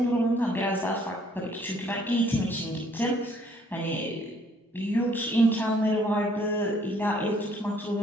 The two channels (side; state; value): both; normal; correlation 0.63